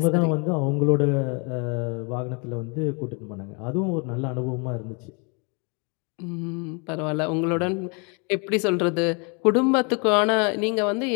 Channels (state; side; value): quieter; right; 34.1 dB